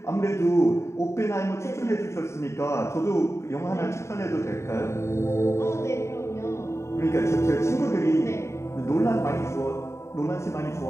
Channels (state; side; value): late; right; 0.14 ms